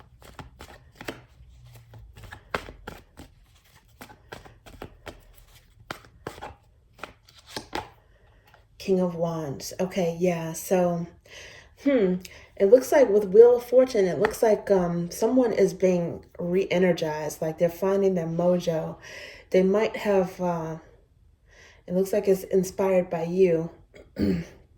King of Wands. Okay, yeah. So, it looks like with Wheel of Fortune, it looks like someone is being re-energized, like they're finding their mojo. They might have, it looks like it's inspired by you.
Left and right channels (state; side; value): identical; both; correlation 1.00